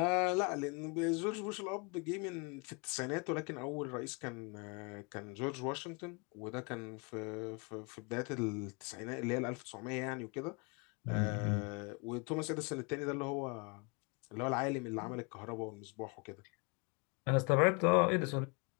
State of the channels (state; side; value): quieter; right; 31.7 dB